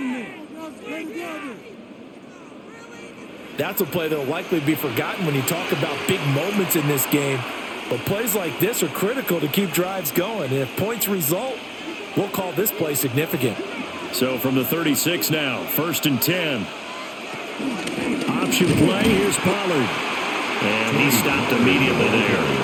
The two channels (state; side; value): identical; both; correlation 1.00